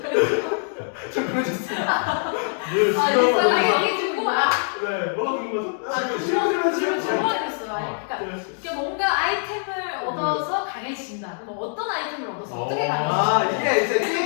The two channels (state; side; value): silent; right; 61 dB below the other